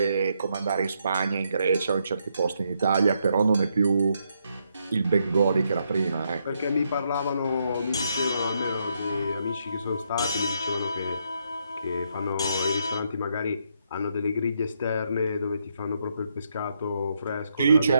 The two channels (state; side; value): inverted; both; correlation -0.77